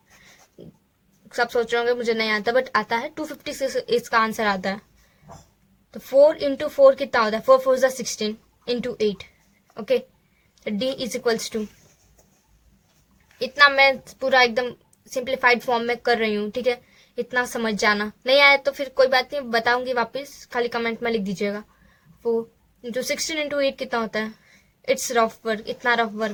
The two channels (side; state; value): both; identical; correlation 1.00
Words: सब सोच रहे होंगे मुझे नहीं आता, बट आता है 256 इसका आंसर आता है। तो 4 इंटू 4 कितना होता है, 4 4 जा 16 into 8, okay. D is equals to, इतना मैं पूरा एकदम सिंप्लीफाइड फॉर्म में कर रही हूँ, ठीक है। इतना समझ जाना, नहीं आया तो फिर कोई बात नहीं, बताऊंगी वापस, खाली कमेंट में लिख दीजिएगा। 4 इंटू 16 इंटू 8 कितना होता है, इट्स रफ वर्क, इतना रफ